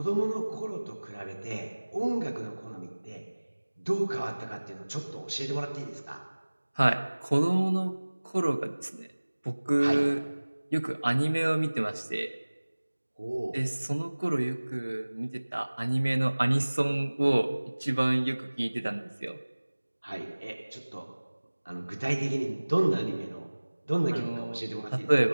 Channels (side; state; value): both; inverted; correlation -1.00